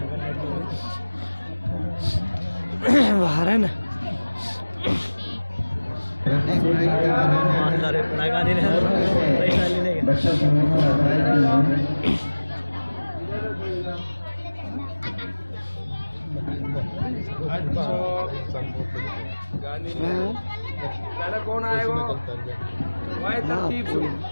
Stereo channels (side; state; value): both; inverted; correlation -1.00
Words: बाहर है ना लगा देने पैसा ले लेंगे गांधी पहले कौन आएगा